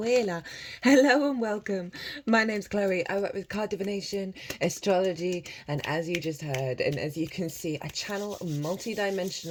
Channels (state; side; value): identical; both; correlation 1.00